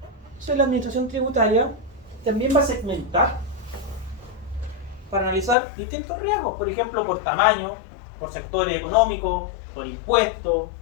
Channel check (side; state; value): right; drops out; at 5.6 s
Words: Entonces la administración tributaria también va a segmentar para analizar distintos riesgos, por ejemplo, por tamaño, por sectores económicos, por impuestos,